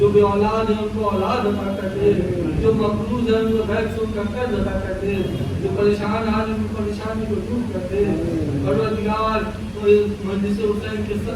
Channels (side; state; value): both; identical; correlation 1.00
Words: بے اولاد ہے ان کو اولاد عطا کر دے، جو مقروض ہے ان کو بیک سود کا قرض عطا کر دے، جو پریشان حال ہے ان کی پریشانی کو دور کر دے، پروردگار مجلس حسین کے